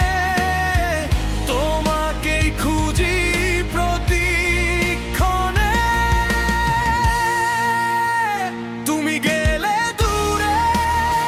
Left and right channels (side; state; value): both; identical; correlation 1.00